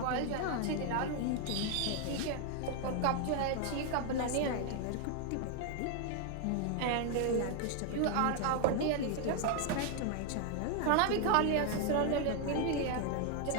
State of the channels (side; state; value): both; different; correlation 0.00